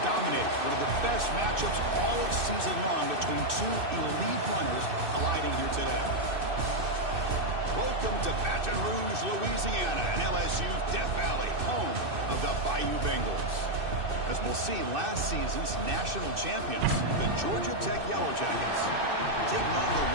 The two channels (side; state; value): left; late; 2.6 ms